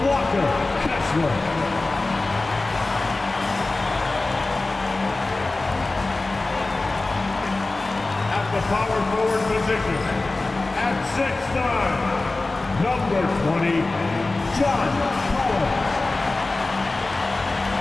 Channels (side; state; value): right; quieter; 3.2 dB